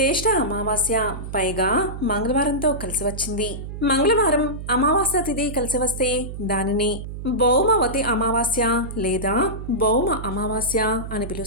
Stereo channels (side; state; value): right; noise; hum, 8 dB below the sound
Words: అమావాస్య, పైగా మంగళవారంతో కలిసి వచ్చింది. మంగళవారం అమావాస్య తిథి కలిసి వస్తే దానిని భౌమవతి అమావాస్య లేదా భౌమ అమావాస్య అని